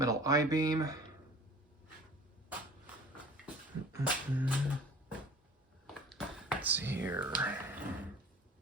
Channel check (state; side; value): normal; both; correlation 0.45